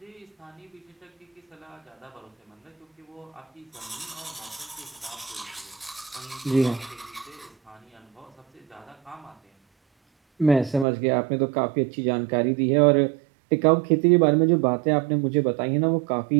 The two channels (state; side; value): drops out; left; at 10.9 s